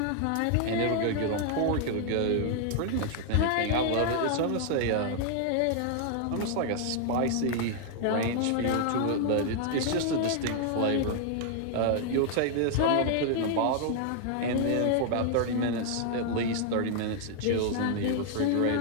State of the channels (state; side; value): different; both; correlation 0.00